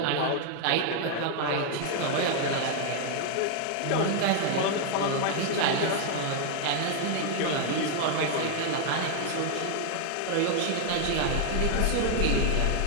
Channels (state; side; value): different; both; correlation 0.00